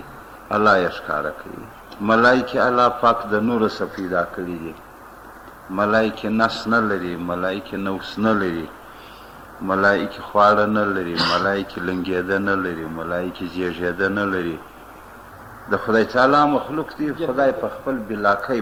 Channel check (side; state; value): both; identical; correlation 1.00